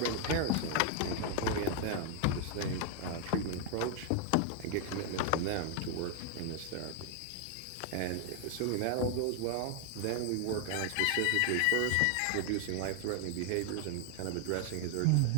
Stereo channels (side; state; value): both; different; correlation 0.00